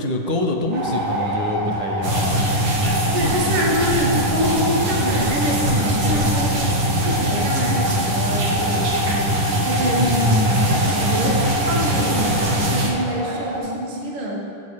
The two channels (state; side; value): late; left; 10 ms